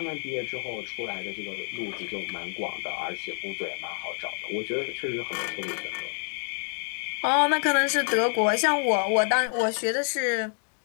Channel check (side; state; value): right; silent; digital silence